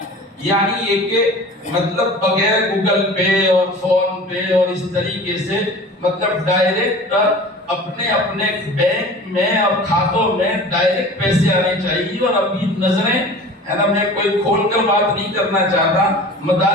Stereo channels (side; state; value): both; normal; correlation 0.40